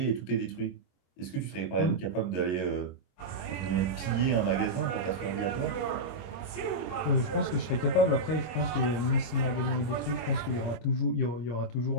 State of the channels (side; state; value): right; late; 25 ms